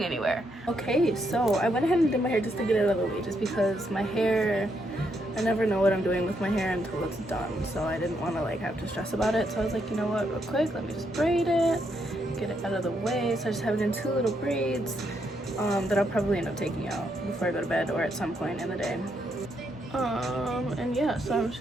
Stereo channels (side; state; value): both; normal; correlation 0.77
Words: anywhere. Okay, so I went ahead and did my hair just to get it out of the way, just because my hair, I never know what I'm doing with my hair until it's done, so I didn't want to have to stress about it. So I was like, you know what, real quick, let me just braid it, get it out of the way. So I just have it in two little braids that I'll probably end up taking out before I go to bed or at some point in the day. And yeah, so I'm